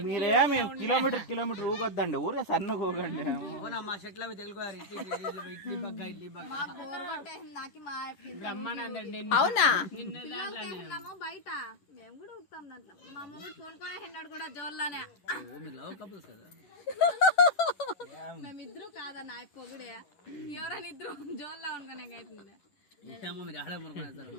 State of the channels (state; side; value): late; right; 10 ms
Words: మీరేమి కిలోమీటర్ ఊగొద్దండి, ఊరే సన్నగా ఊగండి. మా చెట్లు అవి తెలుగువారు ఇడ్లీ పక్క అవునా? బయట మేము కూడా ఊపుతాం దాంట్లో. మా మొగుడు కొనుక్కొని హెండాడు కూడా జోల్లానే. మేమిద్దరు కాదన్న పొగుడే ఎవరైనా ఇద్దరు జోల్లా అనుకునే అవుతుంది. మీరు ఆడే